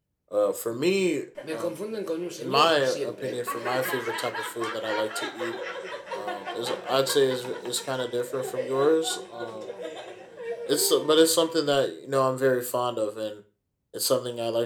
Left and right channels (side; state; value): both; identical; correlation 1.00